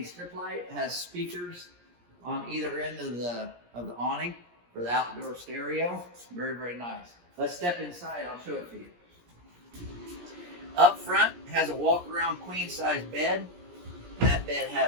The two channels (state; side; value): late; left; 17 ms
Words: strip light, has speakers on either end of the awning for the outdoor stereo. Very, very nice. Let's step inside, I'll show it to you. Up front has a walk-around queen-size bed. That bed